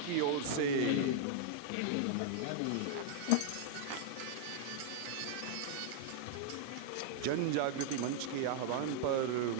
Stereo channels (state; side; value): different; both; correlation -0.01